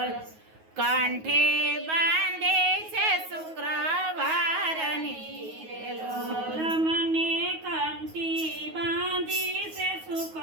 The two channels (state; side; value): late; left; 9.4 ms